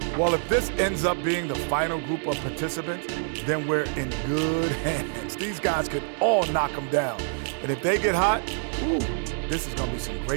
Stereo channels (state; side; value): silent; left; digital silence